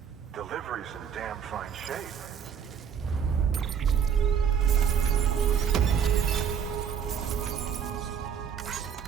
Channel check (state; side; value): quieter; left; 7.5 dB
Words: Delivery's in damn fine shape.